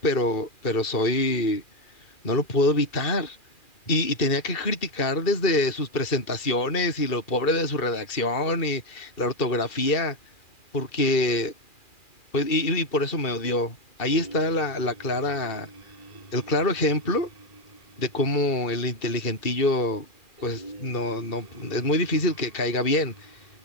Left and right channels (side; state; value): right; late; 2.4 ms